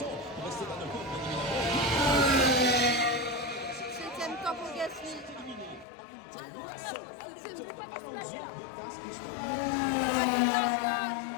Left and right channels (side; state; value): right; drops out; at 5.9 s